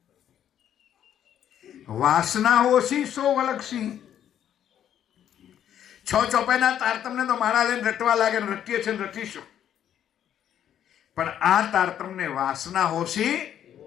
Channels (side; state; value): right; quieter; 10.1 dB